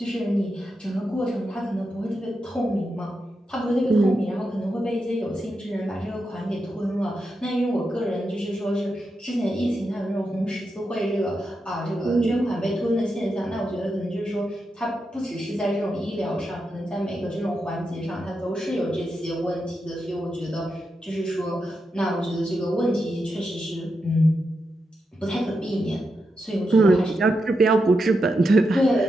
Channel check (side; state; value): both; normal; correlation 0.86